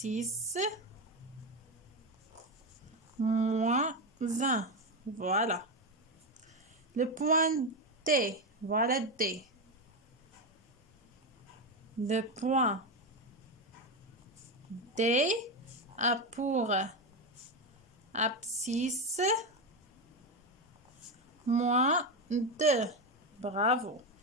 moins 1. Voilà. Le point D, voilà D. Le point D a pour abscisse moins 2. Bravo.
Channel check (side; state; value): both; normal; correlation 0.13